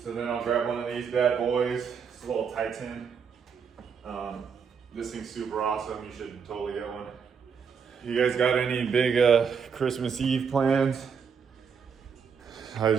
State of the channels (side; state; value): left; quieter; 6.5 dB